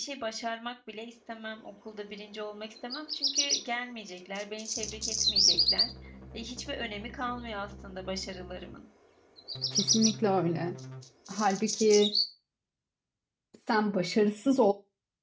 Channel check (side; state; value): both; identical; correlation 1.00